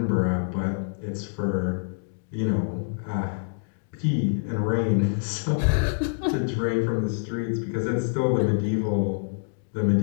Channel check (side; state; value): right; silent; digital silence